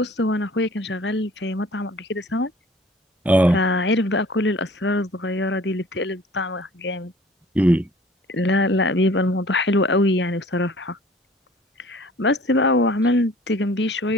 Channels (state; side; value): normal; both; correlation 0.50